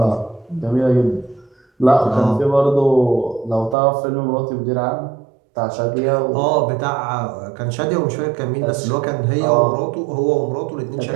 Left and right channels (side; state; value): left; drops out; at 3.8 s